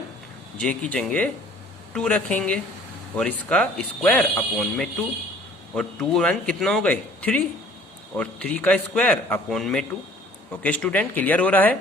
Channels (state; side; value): normal; both; correlation 0.53